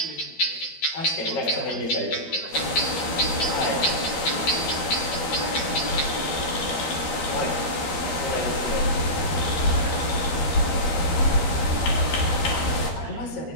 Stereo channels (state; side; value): late; right; 12 ms